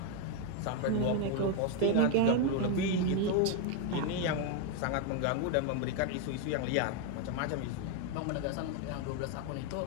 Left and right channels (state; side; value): different; both; correlation 0.01